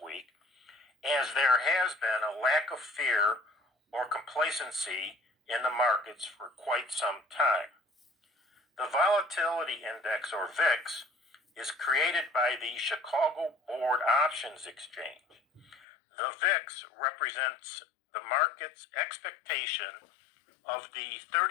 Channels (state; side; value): drops out; right; at 15.8 s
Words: as there has been a lack of fear or complacency in the markets for quite some time. The Volatility Index, or VIX, is created by the Chicago Board Options Exchange. The VIX represents the market's expectation of the